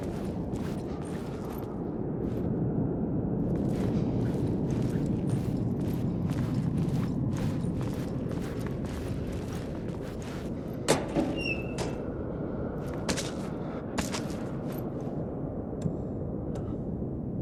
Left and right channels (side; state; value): both; identical; correlation 1.00